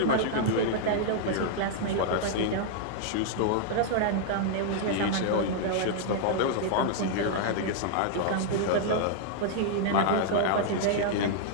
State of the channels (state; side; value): different; both; correlation -0.01